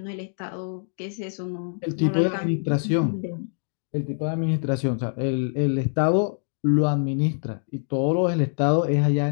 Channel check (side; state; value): right; silent; digital silence